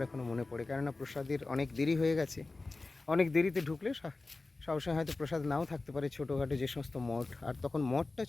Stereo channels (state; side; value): quieter; right; 3.4 dB